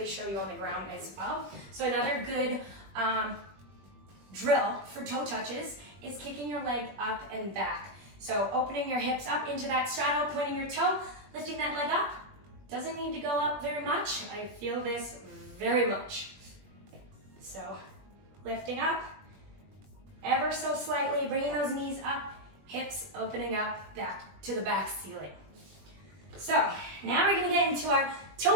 show you on the ground as well. So another good drill for toe touches is kicking your leg up and back. So opening your hips up into that straddle, pointing your toe, lifting that leg up. Doesn't need to go up very much. I feel this very much. So lifting up, ever so slightly, bringing those knees up, hips opening up back to the back ceiling. So now we're gonna get into our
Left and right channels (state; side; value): late; left; 21 ms